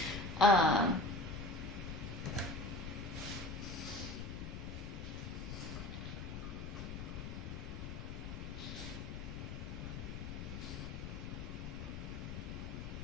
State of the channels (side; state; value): left; noise; rumble, 6 dB below the sound